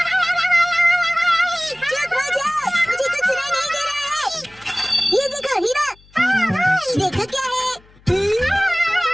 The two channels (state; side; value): noise; left; hum, 28 dB below the sound